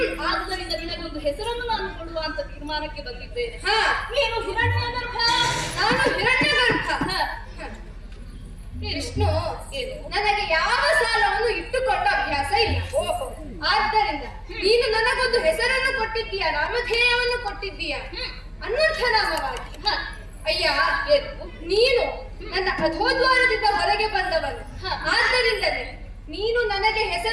ಆದ್ದರಿಂದ ನಿನಗೊಂದು ಹೆಸರನ್ನು ನಾನು ಕೊಡುವ ಅಂತ ತೀರ್ಮಾನಕ್ಕೆ ಬಂದಿದ್ದೇನೆ. ನೀನು ಹಿರಣ್ಯಗರ್ಭ, ನಾನು ಹಿರಣ್ಯಗರ್ಭ. ವಿಷ್ಣು, ನನಗೆ ಯಾವ ಸಾಲವನ್ನು ಇಟ್ಟುಕೊಂಡ ಅಭ್ಯಾಸ ಇಲ್ಲ. ಆದ್ದರಿಂದ ನೀನು ನನಗೊಂದು ಹೆಸರನ್ನು ಕೊಟ್ಟಿದ್ದೀಯ, ನಾಮಧೇಯವನ್ನು ಕೊಟ್ಟಿದ್ದೀಯ ಅನ್ವರ್ಥನಾಮವಾಗಿ. ಅಯ್ಯ, ನೀನು ನನ್ನ ಅಧೋದ್ವಾರದಿಂದ ಹೊರಗೆ ಬಂದವನು. ಆದ್ದರಿಂದಲೇ ನೀನು ನನಗೆ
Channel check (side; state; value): both; identical; correlation 1.00